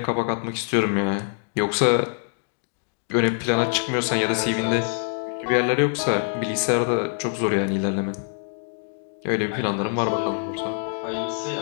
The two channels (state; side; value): silent; right; 62 dB below the other